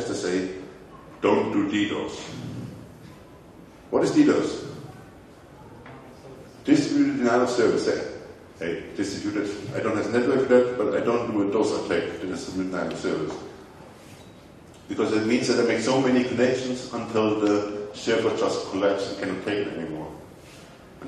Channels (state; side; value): identical; both; correlation 1.00